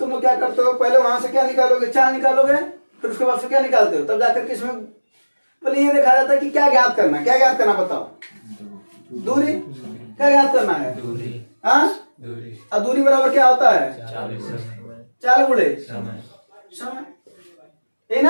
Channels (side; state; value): both; inverted; correlation -1.00